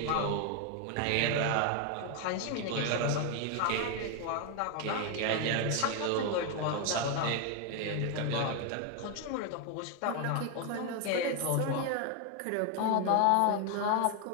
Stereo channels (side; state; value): both; different; correlation 0.01